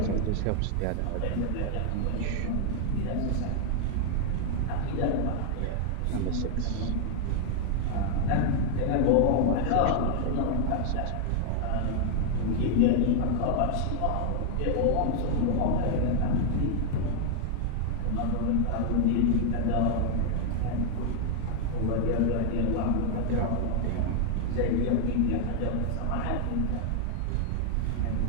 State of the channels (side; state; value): both; different; correlation 0.00